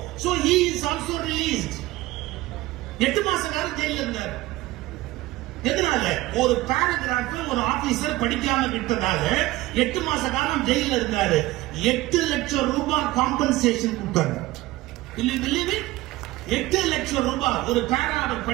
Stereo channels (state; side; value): quieter; left; 18.0 dB